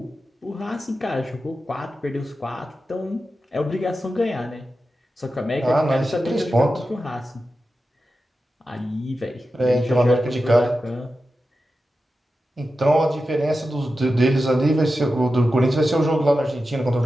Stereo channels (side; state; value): both; normal; correlation 0.92